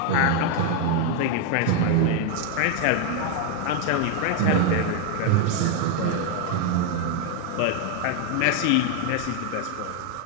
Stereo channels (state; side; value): different; both; correlation 0.01